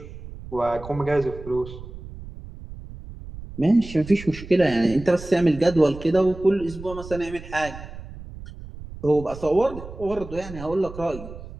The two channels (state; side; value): noise; right; rumble, 14 dB below the sound